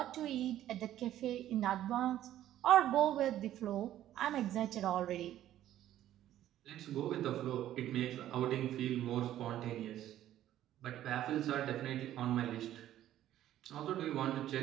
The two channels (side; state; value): left; quieter; 12.6 dB